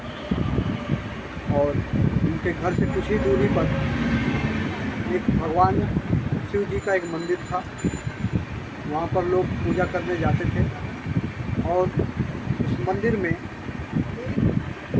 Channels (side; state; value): both; identical; correlation 1.00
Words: और उनके घर से कुछ ही दूरी पर एक भगवान शिव जी का एक मंदिर था। वहाँ पर लोग पूजा करने जाते थे, और उस मंदिर में